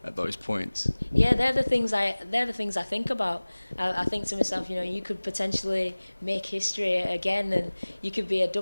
those points? Yeah, they're the things I think about. I think to myself, you could potentially make history again, and you could be a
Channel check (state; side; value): inverted; both; correlation -1.00